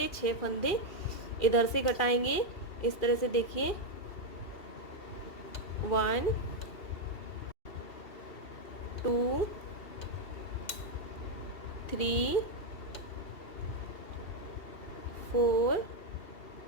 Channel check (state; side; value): late; right; 2.7 ms